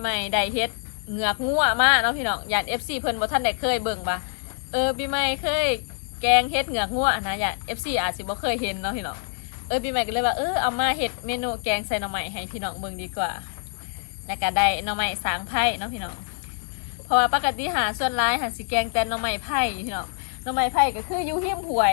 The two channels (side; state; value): right; silent; 62 dB below the other